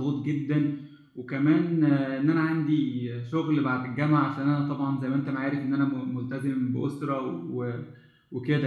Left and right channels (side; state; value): both; identical; correlation 1.00